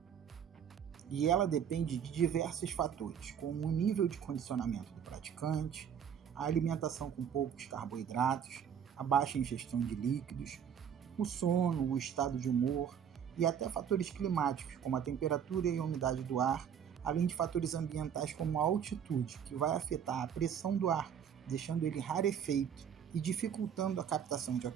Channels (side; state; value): left; quieter; 8.3 dB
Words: E ela depende de diversos fatores, como o nível de condicionamento do praticante, a alimentação com poucos carboidratos, a baixa ingestão de líquidos, o sono, o estado de humor e até fatores climáticos, como a temperatura e a umidade do ar, além de fatores ambientais como a altitude, que vai afetar a pressão do ar, deixando ele rarefeito e dificultando a captação de